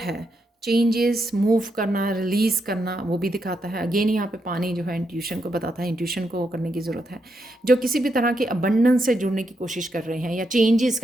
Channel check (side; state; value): both; normal; correlation 0.81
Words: है, चेंजेस, मूव करना, रिलीज़ करना, वो भी दिखाता है। अगेन यहाँ पे पानी जो है इंट्यूशन को बताता है, इंट्यूशन को करने की ज़रूरत है। जो किसी भी तरह के अबंडेंस से जुड़ने की कोशिश कर रहे हैं या चेंजेस